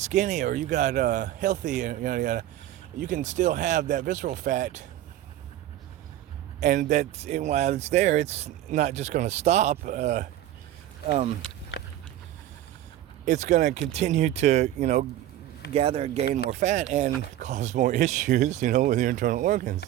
or you got healthy, and you can still have that visceral fat, and while it's there, it's not just going to stop. It's going to continue to gather and gain more fat and cause more issues with your internal organs.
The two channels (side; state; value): left; quieter; 13.0 dB